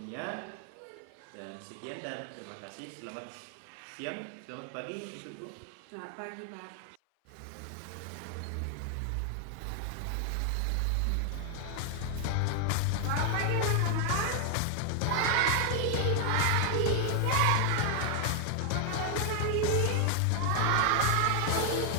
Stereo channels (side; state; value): both; different; correlation 0.00